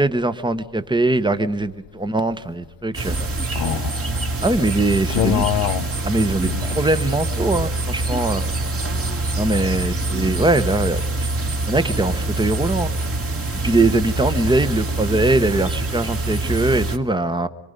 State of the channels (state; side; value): normal; both; correlation 0.64